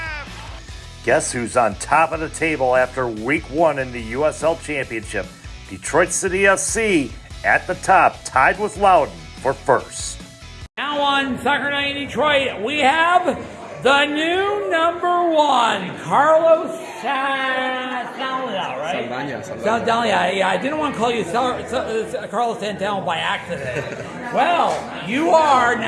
Guess who's on top of the table after week 1 in the USL Championship? Detroit City FC at the top, tied with Loudoun for first. Now on Soccer Night in Detroit, we have the new number 1, Carlos Saldana, right? Saldana. Yeah, I didn't want to call you Carlos Santana by accident. Well, you are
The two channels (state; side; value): identical; both; correlation 1.00